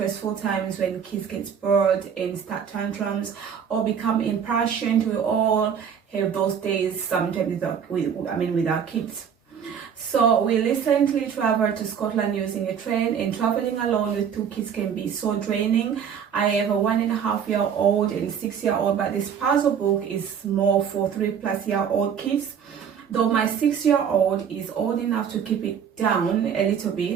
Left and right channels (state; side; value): quieter; left; 7.7 dB